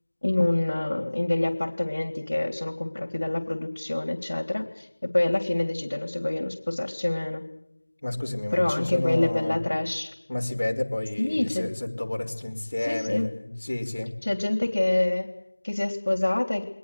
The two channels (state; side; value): inverted; both; correlation -1.00